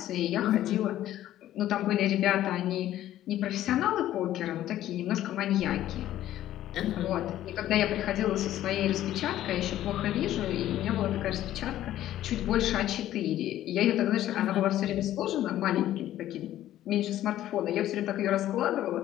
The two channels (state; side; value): quieter; right; 13.1 dB